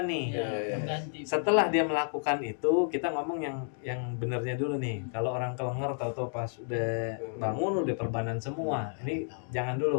nih. Setelah dia melakukan itu, kita ngomong yang benernya dulu nih. Kalau orang kelenger tahu-tahu pas udah bangun udah perbanan semua. Ini jangan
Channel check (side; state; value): right; silent; 57 dB below the other